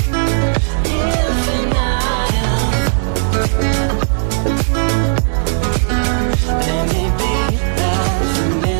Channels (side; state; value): left; silent; digital silence